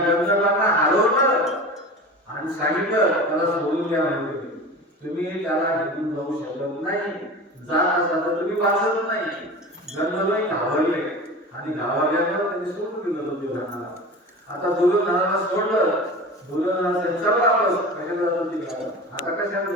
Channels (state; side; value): normal; both; correlation 0.33